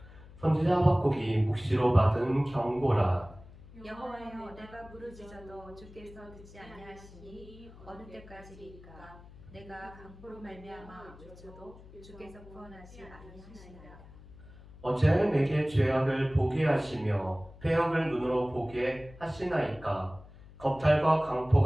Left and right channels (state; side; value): noise; left; hum, 20 dB below the sound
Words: 선지자 하박국이 묵시로 받은 경고라. 여호와여, 내가 부르짖어도 주께서 듣지 아니하시니 어느 때까지리까? 내가 강포로 말미암아 외쳐도 주께서 구원하지 아니하시나이다. 어찌하여 내게 죄악을 보게 하시며 패역을 눈으로 보게 하시나이까? 겁탈과